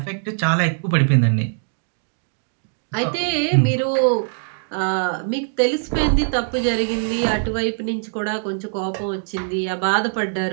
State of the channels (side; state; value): left; silent; digital silence